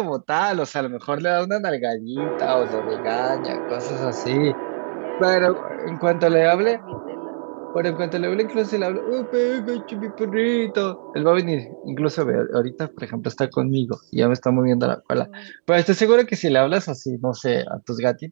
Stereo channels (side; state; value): left; silent; digital silence